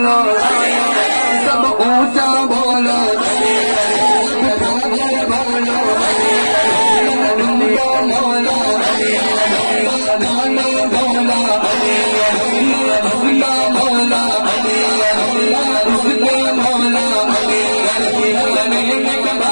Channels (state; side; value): inverted; both; correlation -1.00